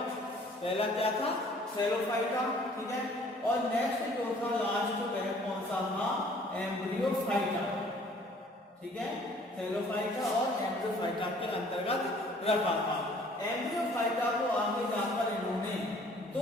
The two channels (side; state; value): both; normal; correlation 0.55